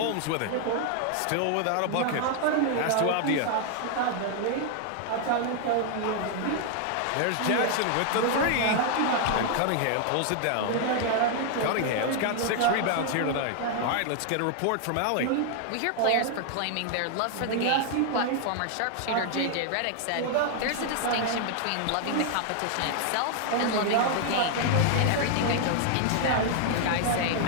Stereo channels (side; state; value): both; different; correlation 0.00